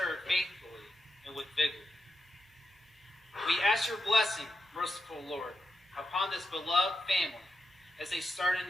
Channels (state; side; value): normal; both; correlation 0.87